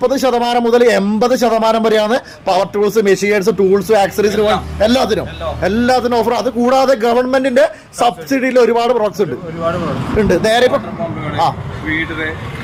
മുതൽ 80% വരെയാണ് പവർ ടൂൾസ്, മെഷീൻസ്, ടൂൾസ്, ആക്സറീസിന് എല്ലാത്തിനും ഓഫർ. അത് കൂടാതെ ഗവൺമെന്റിന്റെ സബ്സിഡിയിൽ ഒരുപാട് പ്രോഡക്ട്സ് ഉണ്ട്. നേരെ ഇപ്പൊ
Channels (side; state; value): both; identical; correlation 1.00